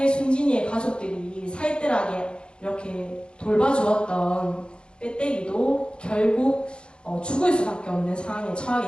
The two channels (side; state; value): right; late; 0.053 ms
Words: 순진이의 가족들이 살뜰하게 이렇게 돌봐주었던 빼떼기도 결국 죽을 수밖에 없는 상황에 처하게